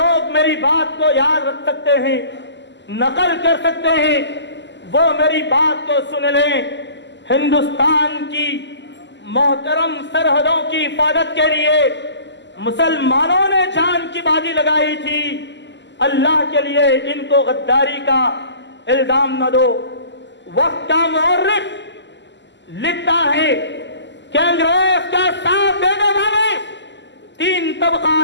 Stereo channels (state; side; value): late; right; 0.52 ms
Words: میری بات کو یاد رکھ سکتے ہیں، نقل کر سکتے ہیں، وہ میری بات کو سن لیں. ہندوستان کی محترم سرحدوں کی حفاظت کے لیے مسلمانوں نے جان کی بازی لگائی تھی. اللہ کے لیے ان کو غداری کا الزام نہ دو. وقت کا مورخ لکھتا ہے کہ انگریز کا ساتھ دینے والے 3